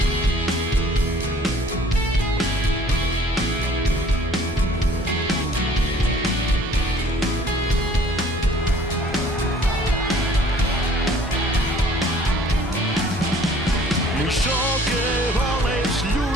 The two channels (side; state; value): both; normal; correlation 0.54